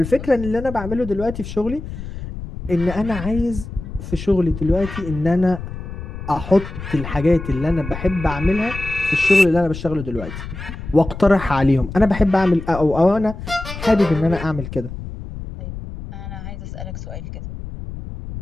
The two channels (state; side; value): noise; left; rumble, 10 dB below the sound